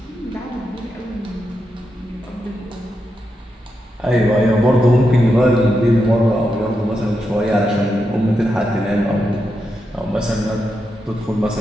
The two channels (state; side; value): normal; both; correlation 0.85